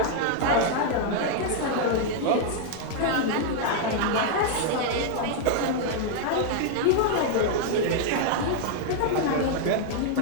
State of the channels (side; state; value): both; different; correlation 0.00